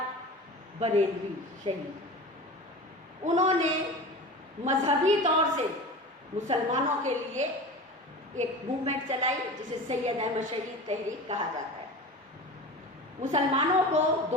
بریلوی شہید۔ انہوں نے مذہبی طور سے مسلمانوں کے لیے ایک موومنٹ چلائی جسے سید احمد شہید تحریک کہا جاتا ہے، مسلمانوں کو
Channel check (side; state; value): both; normal; correlation 0.33